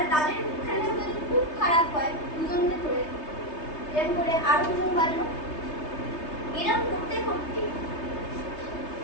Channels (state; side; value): late; right; 3.3 ms